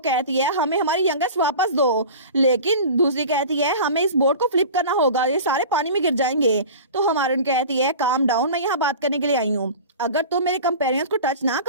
है हमें हमारी यंगेस्ट वापस दो। लेकिन दूसरी कहती है हमें इस बोट को फ्लिप करना होगा, ये सारे पानी में गिर जाएंगे। तो हमारन कहती है काम डाउन, मैं यहाँ बात करने के लिए आई हूँ। अगर तुम मेरे कंपेरियंस को टच ना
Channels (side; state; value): both; inverted; correlation -0.36